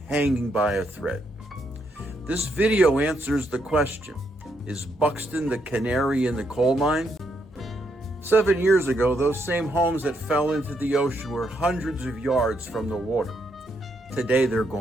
hanging by a thread. This video answers the question, is Buxton the canary in the coal mine? 7 years ago, those same homes that fell into the ocean were hundreds of yards from the water. Today they're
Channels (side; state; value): both; normal; correlation 0.77